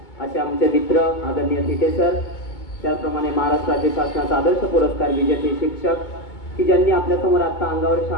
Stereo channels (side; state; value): right; late; 2.2 ms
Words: असे आमचे मित्र आदरणीय थिटे सर, त्याचप्रमाणे महाराष्ट्र राज्य शासनाचा आदर्श पुरस्कार विजेते शिक्षक की ज्यांनी आपल्यासमोर आता अंगावर